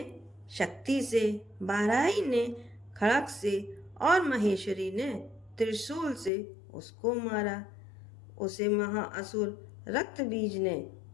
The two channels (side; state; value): right; drops out; at 6.3 s